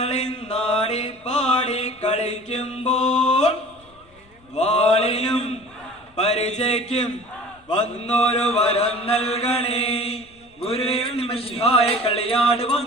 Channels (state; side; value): noise; left; rumble, 29 dB below the sound